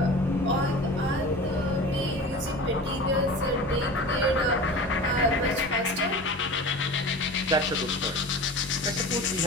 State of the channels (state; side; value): normal; both; correlation 0.35